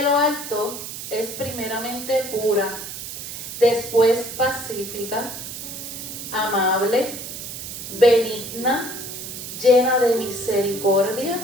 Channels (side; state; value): right; noise; hiss, 9 dB below the sound